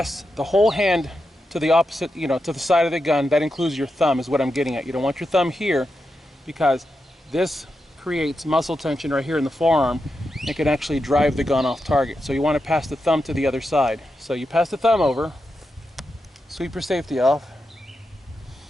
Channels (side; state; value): both; normal; correlation 0.87